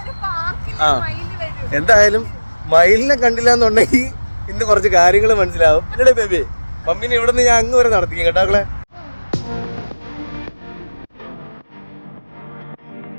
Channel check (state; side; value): inverted; both; correlation -1.00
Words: ആ എന്തായാലും മയിലിനെ കണ്ടില്ല എന്നുണ്ടെങ്കിൽ ഇന്ന് കുറച്ച് കാര്യങ്ങൾ മനസ്സിലാവും. എന്നടേ ബേബി, മമ്മീനെ ഇവിടെ നിന്ന് ഞാൻ അങ്ങ് വരെ നടത്തിക്കും കേട്ടാക്കളെ.